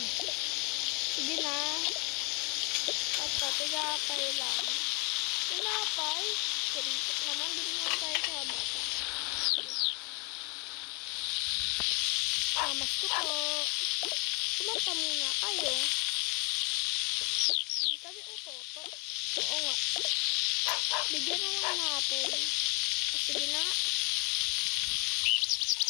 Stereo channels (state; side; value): quieter; right; 32.2 dB